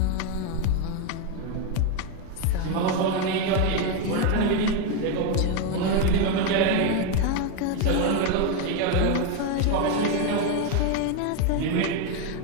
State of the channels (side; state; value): both; different; correlation 0.02